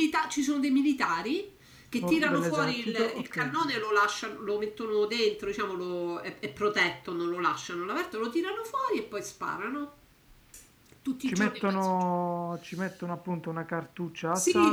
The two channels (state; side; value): identical; both; correlation 1.00